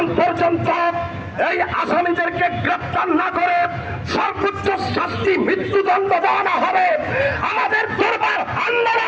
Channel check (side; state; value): both; identical; correlation 1.00